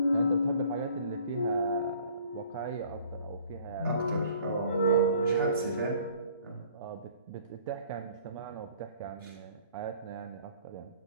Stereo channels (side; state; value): both; inverted; correlation -0.54